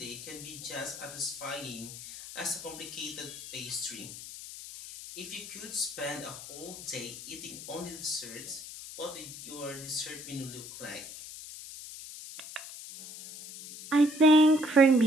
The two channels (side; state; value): left; noise; hiss, 12 dB below the sound